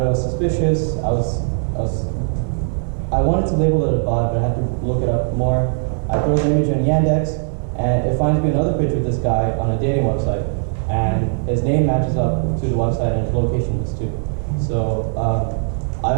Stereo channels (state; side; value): silent; left; 64 dB below the other